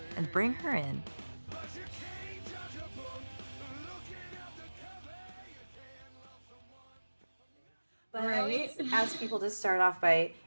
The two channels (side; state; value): both; inverted; correlation -1.00